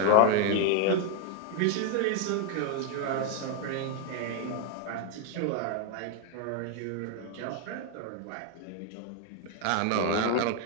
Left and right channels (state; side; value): different; both; correlation 0.00